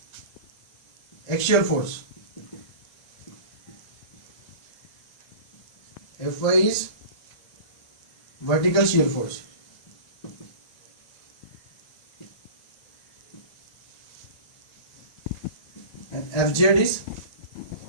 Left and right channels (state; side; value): late; right; 1.9 ms